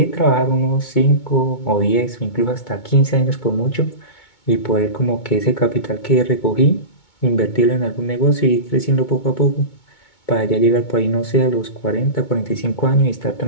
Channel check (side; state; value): right; late; 2.2 ms